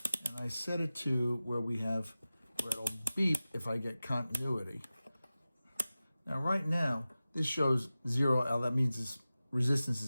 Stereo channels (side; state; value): both; inverted; correlation -0.96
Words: and I set it to where it'll beep if I get continuity. Now right now, this shows 0L, that means this resistance